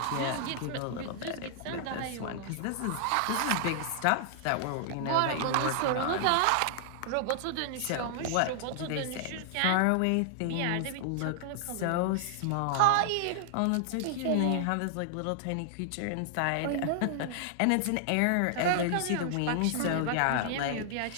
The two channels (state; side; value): different; both; correlation -0.01